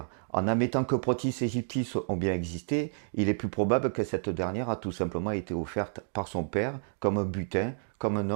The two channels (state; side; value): silent; left; digital silence